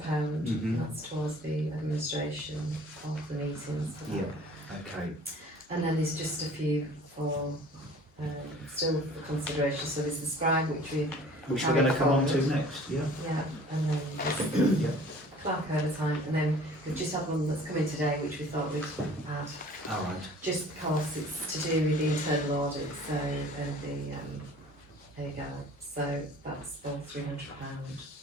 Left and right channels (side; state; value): both; normal; correlation 0.49